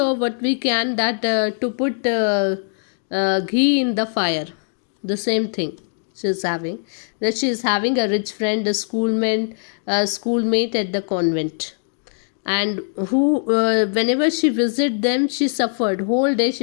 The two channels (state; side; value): silent; right; digital silence